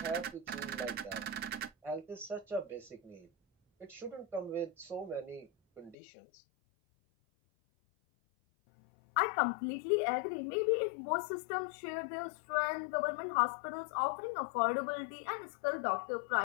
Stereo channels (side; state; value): right; drops out; at 6.0 s